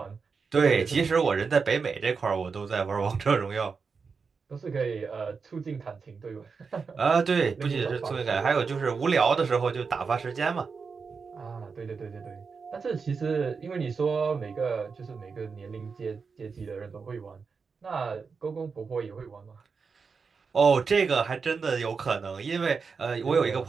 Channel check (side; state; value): left; quieter; 5.2 dB